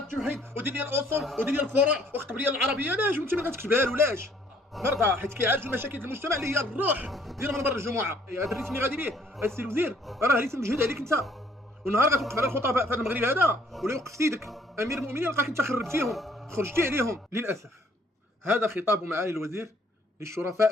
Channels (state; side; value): normal; both; correlation 0.62